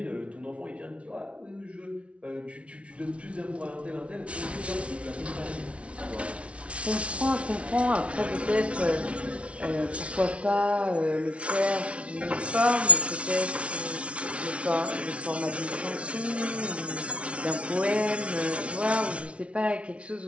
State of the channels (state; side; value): late; left; 0.061 ms